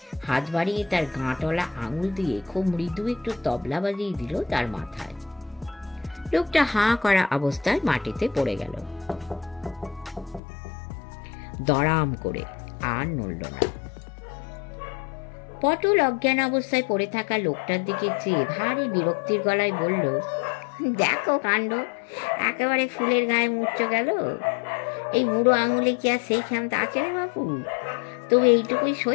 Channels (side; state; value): right; drops out; at 10.4 s